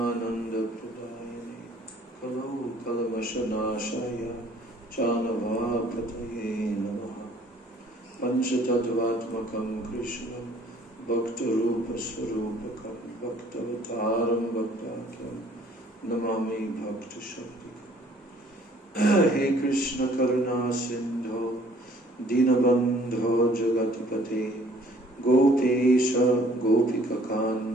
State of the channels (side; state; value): both; normal; correlation 0.57